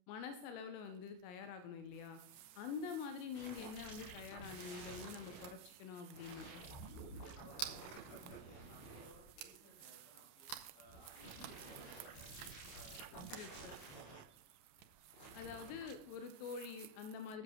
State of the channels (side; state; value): right; late; 28 ms